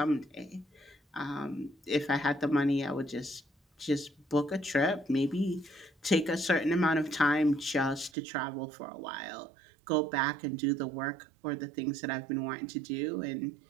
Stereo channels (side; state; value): left; drops out; at 8.1 s